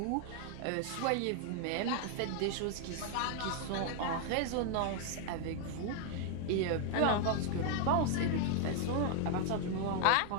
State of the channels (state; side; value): different; both; correlation 0.00